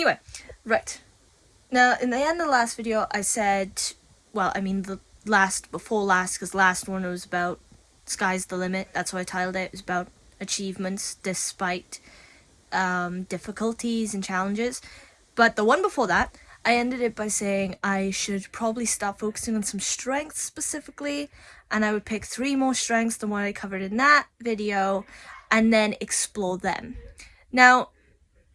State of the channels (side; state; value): both; identical; correlation 1.00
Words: right. Now, in the end of the last video, I said, well, I mean the before last, because last one was about sky's the limit. That's what I titled it. It was about achievements despite difficulties and challenges. But the one before that, I ended it by saying I should probably start focusing on some strengths specifically, and I would pick 3 more strengths than what I covered in that video, and then explore them. Now,